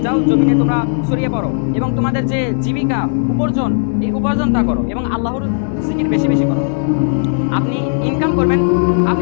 যাও, জমিনে তোমরা ছড়িয়ে পড়ো এবং তোমাদের যে জীবিকা উপার্জন, এই উপার্জনটা করো এবং আল্লাহর জিকির বেশি বেশি করো। আপনি ইনকাম করবেন,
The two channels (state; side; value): silent; right; digital silence